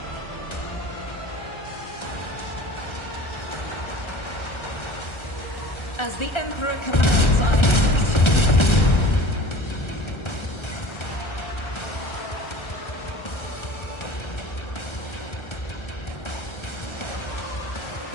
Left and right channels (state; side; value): late; right; 1.3 ms